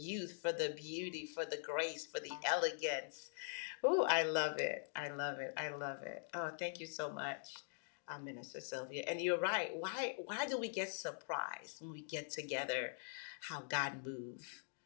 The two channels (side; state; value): right; silent; digital silence